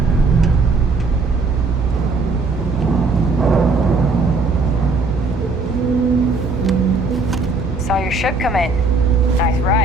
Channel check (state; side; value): quieter; left; 3.7 dB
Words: Saw your ship come in. Nice